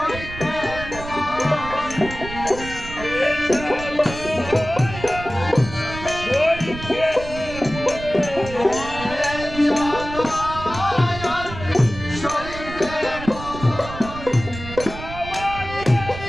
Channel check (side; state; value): right; noise; rumble, 11 dB below the sound